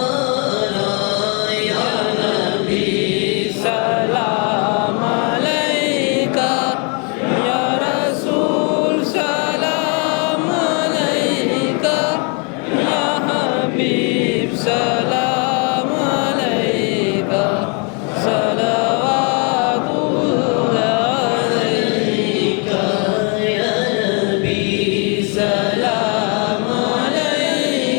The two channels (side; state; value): right; quieter; 35.3 dB